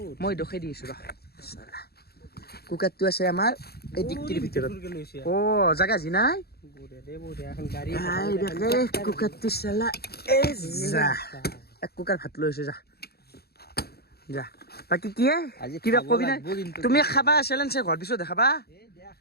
মই দেখাই দি আছো ৰ কুকাৰটো আছে আমাৰ এই ডিক্কিৰ ভিতৰত জাগা যি নাই কুকাৰটো চালা এই যা এক কুকাৰ ভাত লৈ আছো যা যা বাকী কি কিবা কবি না তুমি খাবা চেলেঞ্জ ঘৰ পিছত দেখাবা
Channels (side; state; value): right; late; 0.46 ms